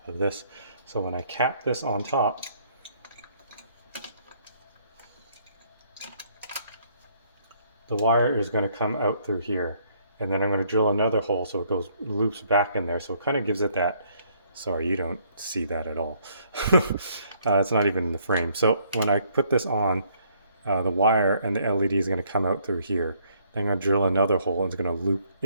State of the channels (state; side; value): inverted; both; correlation -0.66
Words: of this. So when I cap this on top, the wire is going to come out through here. And then I'm going to drill another hole so it goes loops back in there. So it kind of gives it that, sorry, you don't see that at all. It's not even in the frame. So when I put this on, the wire and the LED is going to come out through here. Then I'm going to drill another hole and it's going to loop